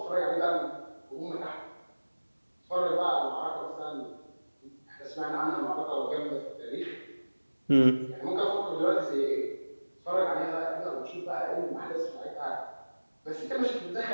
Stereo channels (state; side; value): inverted; both; correlation -1.00